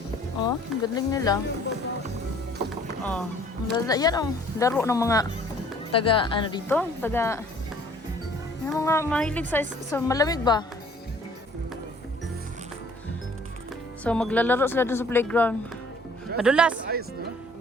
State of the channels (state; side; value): normal; both; correlation 0.55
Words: Ang galing nila. Yan laro ng mga yung mga mahilig sa malamig ba? So, maglalaro sila dun sa playground. Madulas.